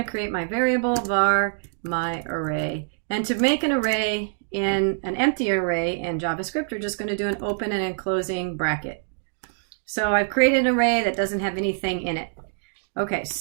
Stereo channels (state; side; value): silent; left; digital silence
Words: create my variable var my array. And to make an array in an empty array in JavaScript, we're just going to do an open and closing bracket. So I've created an array that doesn't have anything in it. Okay,